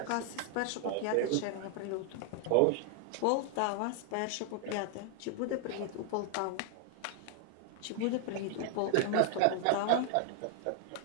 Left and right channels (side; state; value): both; different; correlation 0.00